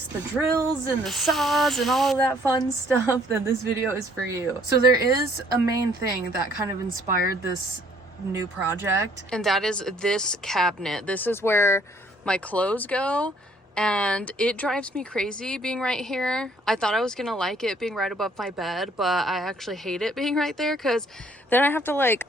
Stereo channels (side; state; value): both; normal; correlation 0.62